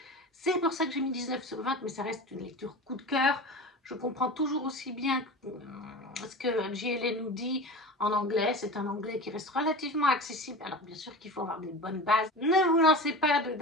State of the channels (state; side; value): normal; both; correlation 0.31